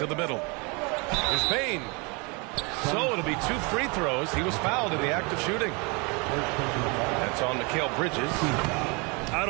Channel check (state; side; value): quieter; left; 30.2 dB